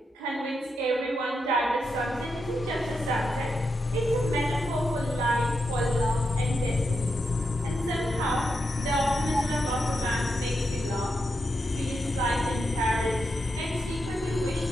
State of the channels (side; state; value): both; normal; correlation 0.85